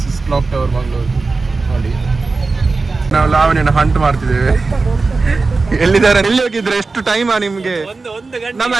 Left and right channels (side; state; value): left; quieter; 3.9 dB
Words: ಕ್ಲಾಕ್ ಟವರ್ ಮಂಗಳೂರು ನೋಡಿ. ನಾವು ಲಾವಣಿಯನ್ನು ಹಂಟ್ ಮಾಡ್ತಿದ್ದೇವೆ. ಎಲ್ಲಿದ್ದಾರೆ? ಎಲ್ಲಿ ಹೋಗಿದ್ರೆ? ಎಷ್ಟು ಟೈಮಾ ನಿಮ್ಗೆ? ನಮ್ಮ